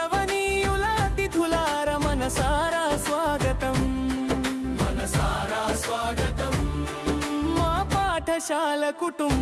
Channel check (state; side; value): identical; both; correlation 1.00